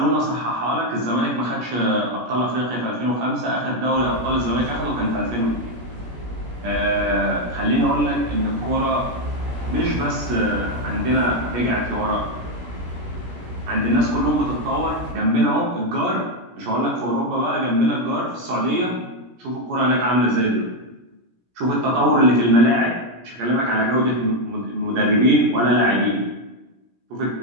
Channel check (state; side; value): late; left; 17 ms